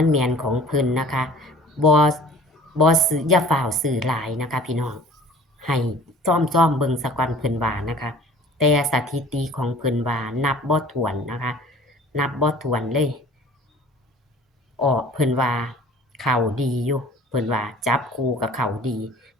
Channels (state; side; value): normal; both; correlation 0.47